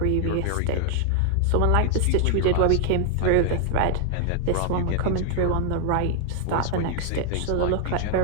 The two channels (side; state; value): both; different; correlation 0.00